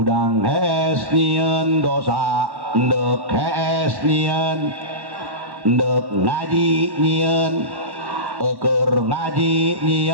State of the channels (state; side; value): late; left; 1.1 ms